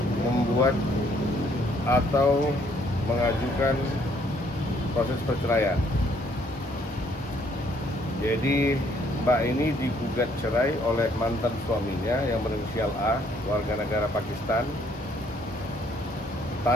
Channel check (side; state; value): both; normal; correlation 0.66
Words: membuat atau mengajukan proses perceraian. Jadi Mbak ini digugat cerai oleh mantan suaminya yang berinisial A, warga negara Pakistan,